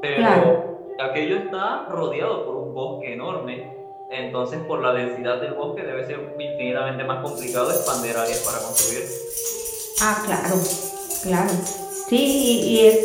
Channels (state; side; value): identical; both; correlation 1.00